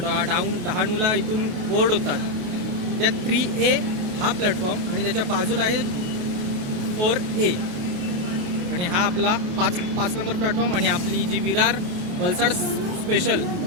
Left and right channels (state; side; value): late; left; 28 ms